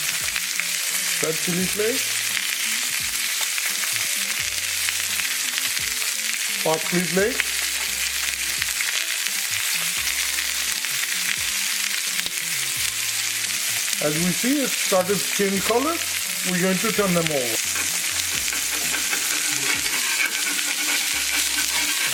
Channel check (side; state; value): both; identical; correlation 1.00